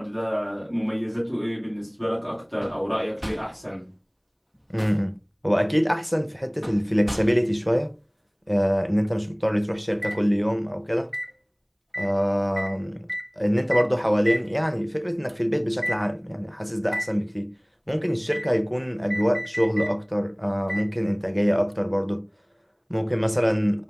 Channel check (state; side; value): identical; both; correlation 1.00